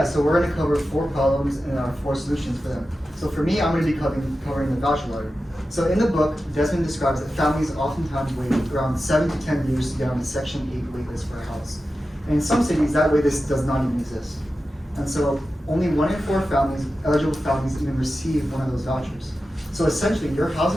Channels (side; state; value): both; normal; correlation 0.92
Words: so we're going to cover 4 problems and 4 solutions for them. So for me, I'm going to be covering the voucher lottery. So in the book, Desmond describes that families oftentimes wait around 7 to 10 years to get on the Section 8 waitlist for a house. And in some cities, that waitlist does not even exist. And so only 1 in 4 eligible families even receive one of those vouchers. So essentially, your